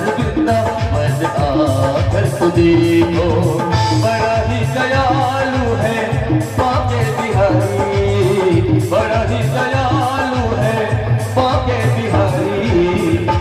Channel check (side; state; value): both; identical; correlation 1.00